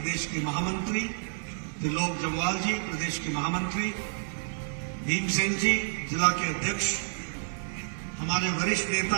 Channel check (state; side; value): silent; left; digital silence